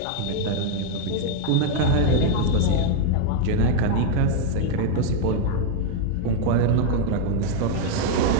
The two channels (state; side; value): different; both; correlation 0.00